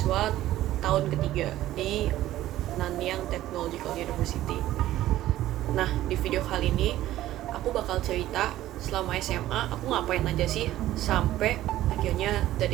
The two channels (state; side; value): quieter; left; 14.4 dB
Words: tahun ketiga di Nanyang Technological University. Nah, di video kali ini aku bakal cerita selama SMA aku ngapain aja sih sampai akhirnya